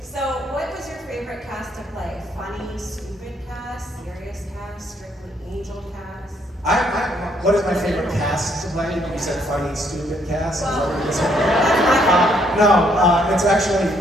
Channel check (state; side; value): normal; both; correlation 0.69